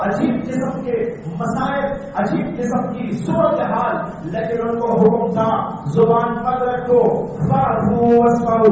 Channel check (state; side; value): identical; both; correlation 1.00